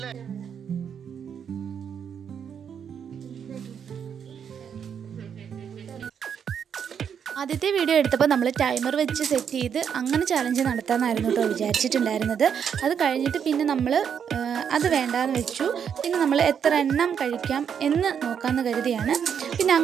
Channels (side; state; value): left; quieter; 7.7 dB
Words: ആദ്യത്തെ വീഡിയോ എടുത്തപ്പോൾ നമ്മൾ ടൈമർ വെച്ച് സെറ്റ് ചെയ്ത് അങ്ങനെ ചലഞ്ച് നടത്താമെന്നായിരുന്നു കേട്ടോ വിചാരിച്ചിട്ടുണ്ടായിരുന്നത്. അത് കഴിഞ്ഞിട്ട് പിന്നെ നമ്മൾ അത് വേണ്ടാന്ന് വെച്ചു. പിന്നെ നമ്മൾ എത്ര എണ്ണം കഴിക്കാം എന്ന് നോക്കാമെന്ന് കരുതിയാണ് പിന്നെ